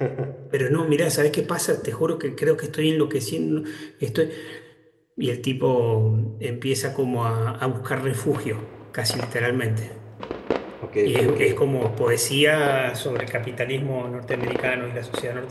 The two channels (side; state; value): both; identical; correlation 1.00